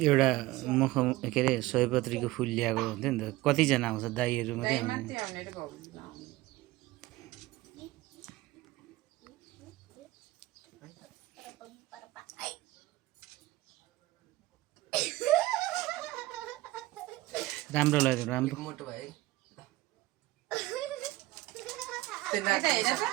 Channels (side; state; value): left; quieter; 18.2 dB